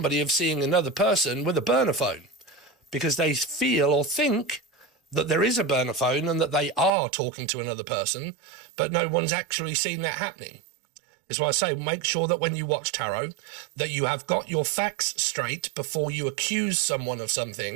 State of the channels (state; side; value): drops out; left; at 6.9 s